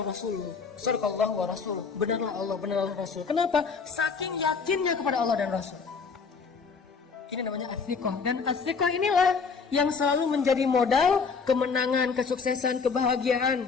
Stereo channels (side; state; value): right; quieter; 5.2 dB